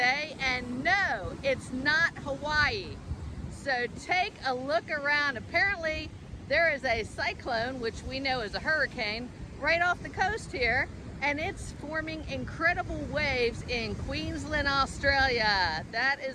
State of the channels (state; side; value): identical; both; correlation 1.00